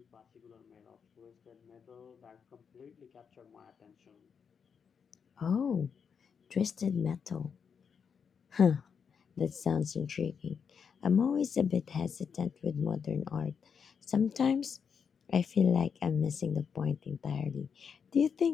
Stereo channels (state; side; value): quieter; right; 6.6 dB